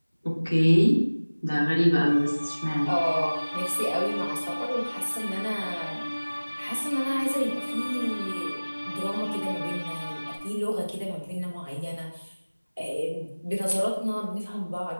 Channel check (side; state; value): both; inverted; correlation -1.00